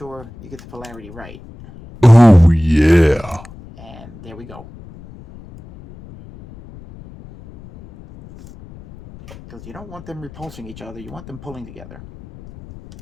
you get the polarity right. Oh yeah. And there we go. Because you don't want them repulsing each other, you want them pulling together.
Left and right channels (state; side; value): noise; left; rumble, 19 dB below the sound